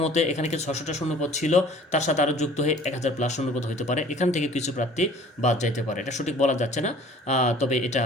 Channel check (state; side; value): normal; both; correlation 0.50